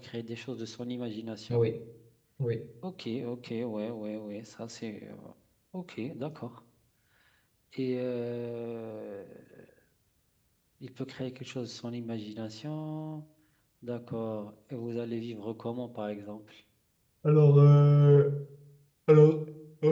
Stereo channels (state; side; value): identical; both; correlation 1.00